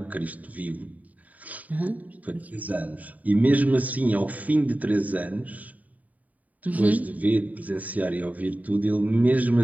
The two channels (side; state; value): left; late; 0.072 ms